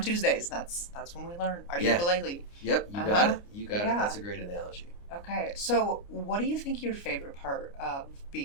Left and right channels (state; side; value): late; right; 29 ms